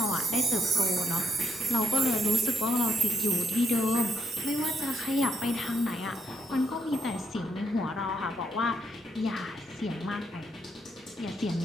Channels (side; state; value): both; normal; correlation 0.75